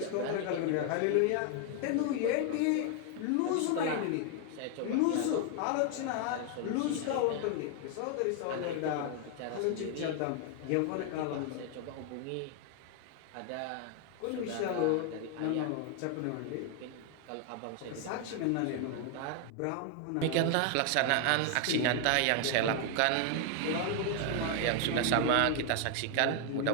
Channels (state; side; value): different; both; correlation 0.00